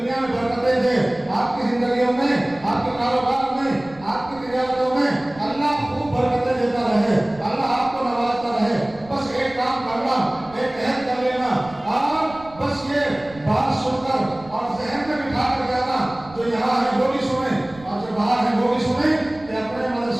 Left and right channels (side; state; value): right; noise; rumble, 21 dB below the sound